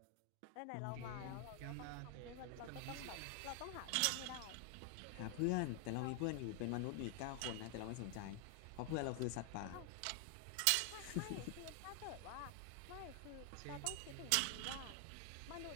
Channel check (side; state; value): both; different; correlation 0.00